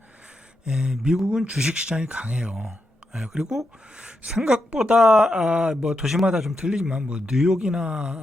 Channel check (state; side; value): normal; both; correlation 0.85